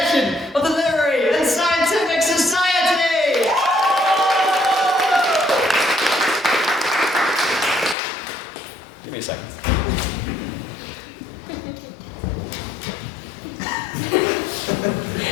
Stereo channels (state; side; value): drops out; right; at 8.0 s